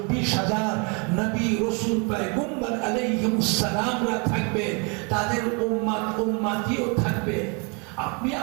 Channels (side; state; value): left; quieter; 33.3 dB